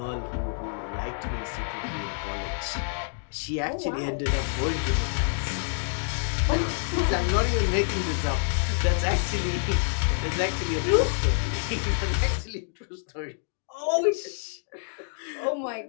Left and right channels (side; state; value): right; silent; digital silence